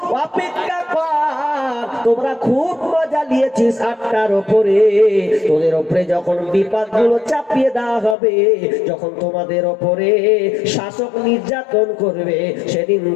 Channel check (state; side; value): drops out; right; at 8.2 s